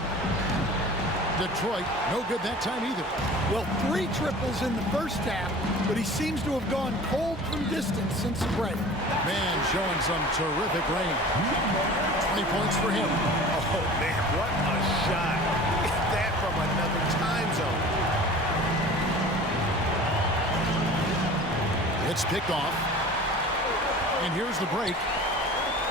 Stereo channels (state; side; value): normal; both; correlation 0.41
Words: Detroit, no good that time either. Well, 3 triples in the first half, but he seems to have gone cold from distance since the break. Man, showing some terrific range. 20 points for him. Oh, man, what a shot. Is that from another time zone? It's picked off. And here's the break.